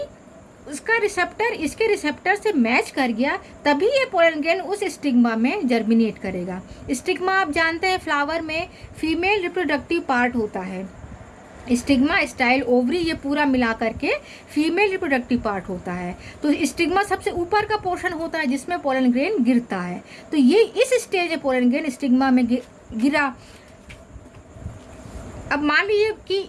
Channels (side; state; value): both; identical; correlation 1.00